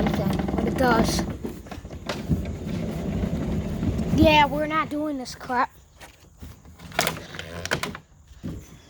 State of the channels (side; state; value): both; identical; correlation 1.00